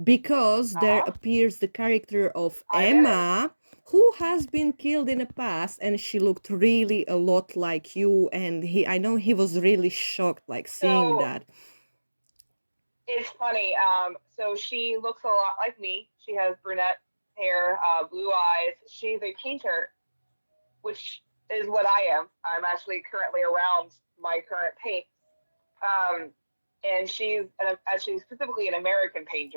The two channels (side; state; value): both; inverted; correlation -1.00